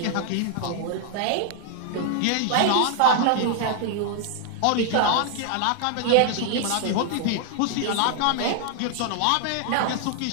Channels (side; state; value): both; different; correlation 0.00